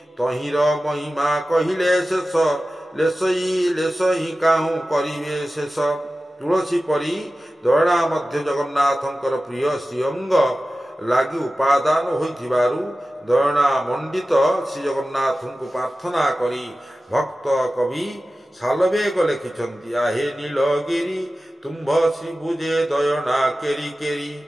ତହିଁର ମହିମା କହିଲେ ଶେଷ ଲେଶଇ କାହୁଁ କରିବେ ଶେଷ। ତୁଳସୀ ପରି ଦୟଣା ମଧ୍ୟ ଜଗନ୍ନାଥଙ୍କର ପ୍ରିୟ ଶ୍ରୀଅଙ୍ଗ ଲାଗି ଉପାଦାନ ହୋଇଥିବାରୁ ଦୟଣା ମଣ୍ଡିତ ଶ୍ରୀଜଗନ୍ନାଥଙ୍କୁ ପ୍ରାର୍ଥନା କରି ଭକ୍ତ କବି ଶାଲବେଗ ଲେଖିଛନ୍ତି, ଆହେ ନୀଳଗିରି ତୁମ୍ଭ ଶ୍ରୀଭୁଜେ ଦୟଣା କେରି କେରି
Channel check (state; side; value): normal; both; correlation 0.95